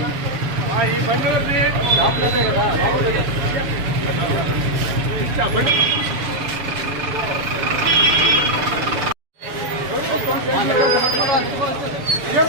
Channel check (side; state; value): left; late; 7.1 ms